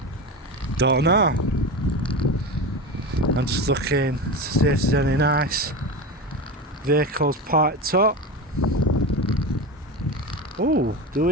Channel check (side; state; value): both; normal; correlation 0.23